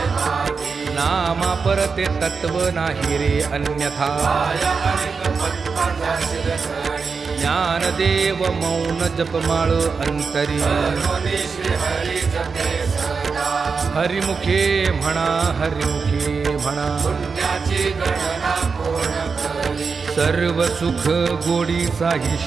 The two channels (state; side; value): quieter; left; 5.1 dB